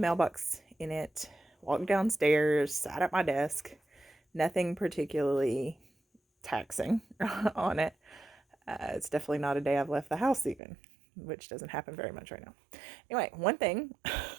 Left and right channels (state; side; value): drops out; left; at 10.6 s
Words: in it, walked downstairs, sat at my desk. Nothing particularly taxing on it. It's definitely not a day I've left the house even, which doesn't happen very much right now. Anyway, one thing,